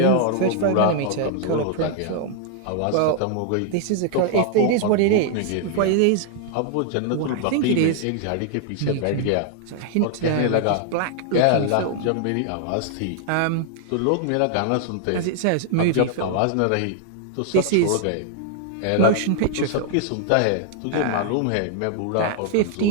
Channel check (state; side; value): different; both; correlation 0.00